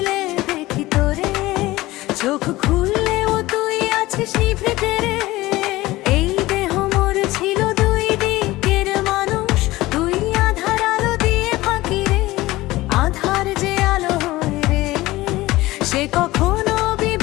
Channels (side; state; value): right; quieter; 18.4 dB